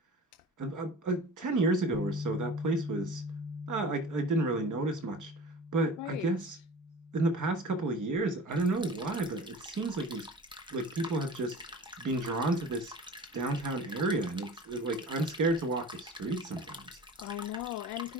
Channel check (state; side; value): normal; both; correlation 0.40